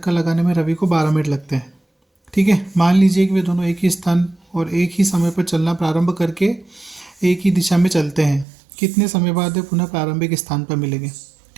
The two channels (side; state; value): left; drops out; at 8.5 s